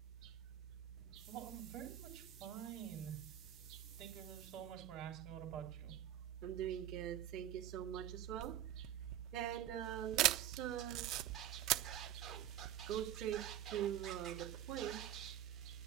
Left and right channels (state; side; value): quieter; left; 11.8 dB